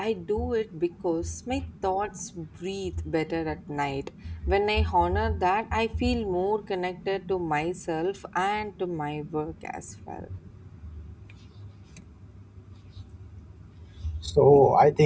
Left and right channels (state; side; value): identical; both; correlation 1.00